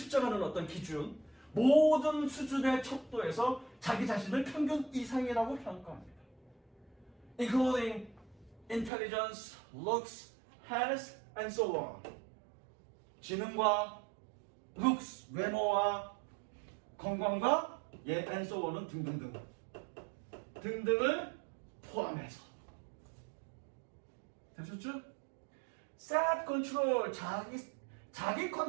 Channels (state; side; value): drops out; left; at 8.9 s